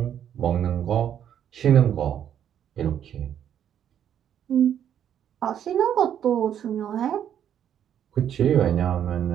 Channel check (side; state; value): left; quieter; 9.6 dB